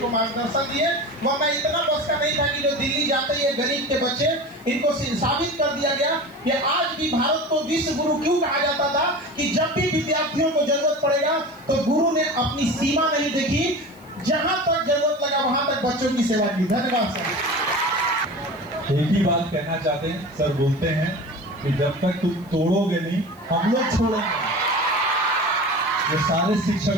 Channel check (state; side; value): noise; left; hiss, 28 dB below the sound